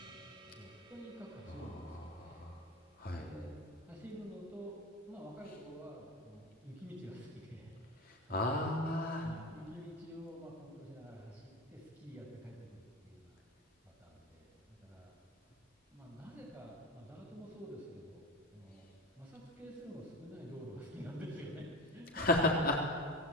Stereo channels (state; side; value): normal; both; correlation 0.28